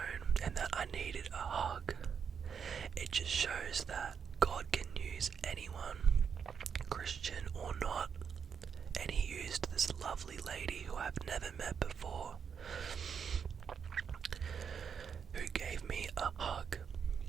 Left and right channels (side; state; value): left; quieter; 6.9 dB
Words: and that I needed a hug. It just shows that God can use anyone, Christian or not, and He used this lovely lady who I've never met before, who gave me a hug.